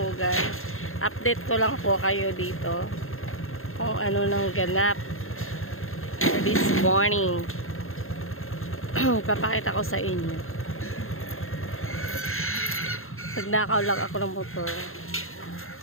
Update ko lang po kayo dito kung ano nang ganap this morning. Papakita ko sa inyo. Nagnakaw lang ako ng motor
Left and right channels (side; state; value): right; late; 0.61 ms